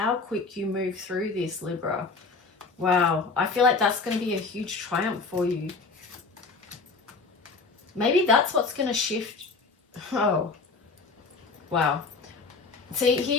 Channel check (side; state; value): right; quieter; 4.2 dB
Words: quick you move through this, Libra. Wow, I feel like that's going to be a huge triumph for you. Maybe that's what's going to shift. Oh, wow. See,